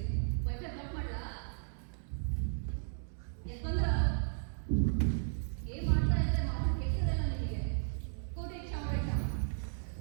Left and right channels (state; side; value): silent; left; digital silence